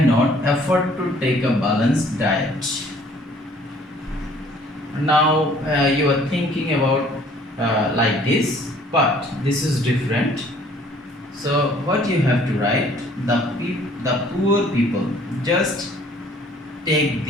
afford to take a balanced diet. Now you are thinking about like this, but this is different. So what you have to write, the poor people, just take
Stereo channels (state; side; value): normal; both; correlation 0.57